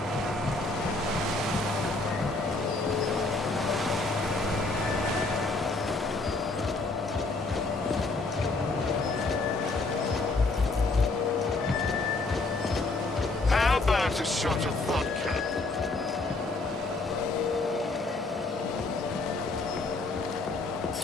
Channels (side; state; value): right; quieter; 3.4 dB